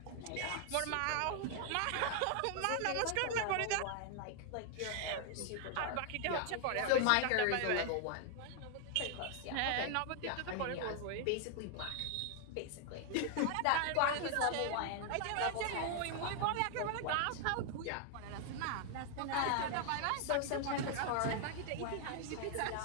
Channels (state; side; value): different; both; correlation 0.00